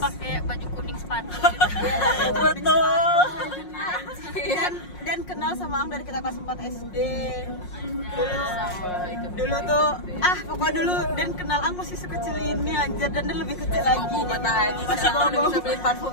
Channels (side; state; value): right; late; 5.5 ms